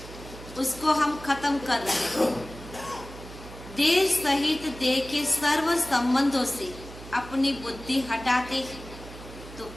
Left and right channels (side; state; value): right; noise; hum, 15 dB below the sound